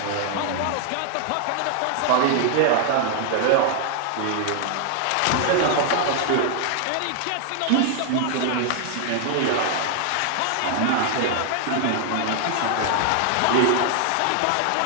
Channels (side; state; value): both; different; correlation 0.00